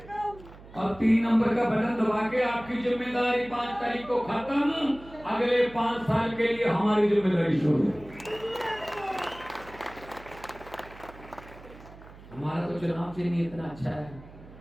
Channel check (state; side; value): noise; right; hum, 19 dB below the sound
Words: और 3 नंबर का बटन दबा के आपकी जिम्मेदारी 5 तारीख को खत्म, अगले 5 साल के लिए हमारी जिम्मेदारी शुरू। हमारा तो चुनाव चिन्ह इतना अच्छा है,